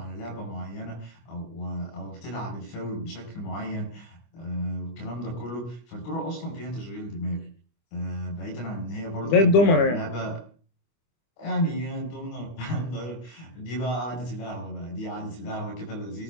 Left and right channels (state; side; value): late; right; 25 ms